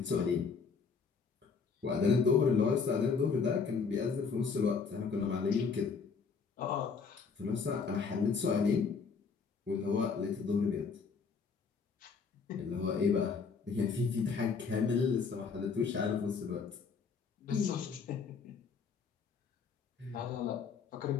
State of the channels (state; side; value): quieter; right; 5.4 dB